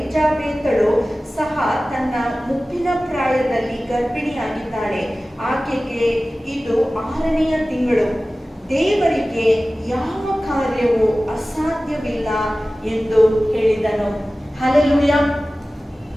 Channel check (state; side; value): normal; both; correlation 0.97